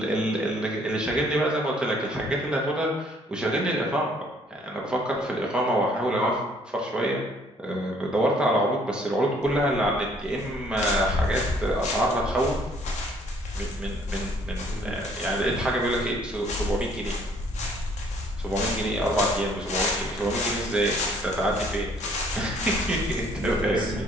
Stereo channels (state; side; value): normal; both; correlation 0.61